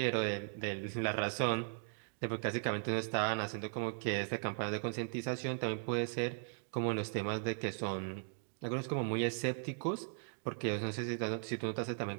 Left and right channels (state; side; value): silent; left; digital silence